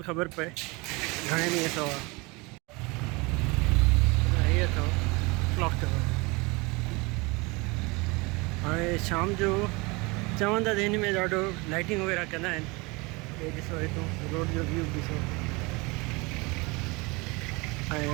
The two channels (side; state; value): left; quieter; 26.0 dB